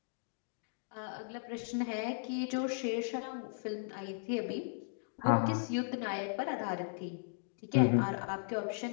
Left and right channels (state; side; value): silent; right; digital silence